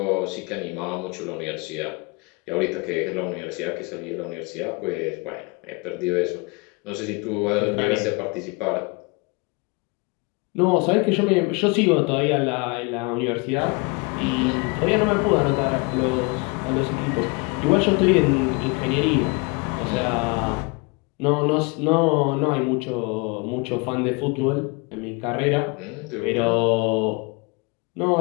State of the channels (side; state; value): right; quieter; 29.3 dB